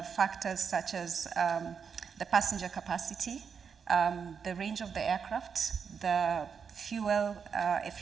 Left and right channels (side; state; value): left; quieter; 6.5 dB